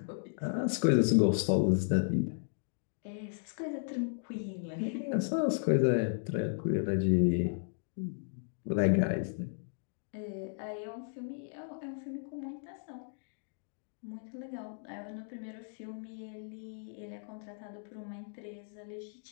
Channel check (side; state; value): right; silent; digital silence